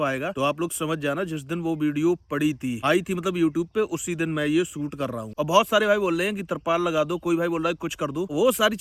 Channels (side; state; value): both; identical; correlation 1.00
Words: आएगा, तो आप लोग समझ जाना जिस दिन वो वीडियो पड़ी थी आई थी मतलब यूट्यूब पे, उसी दिन मैं ये शूट कर रहा हूँ। और बहुत सारे भाई बोल रहे हैं कि तरपाल लगा दो, कोई भाई बोल रहा है कुछ कर दो। वो सारी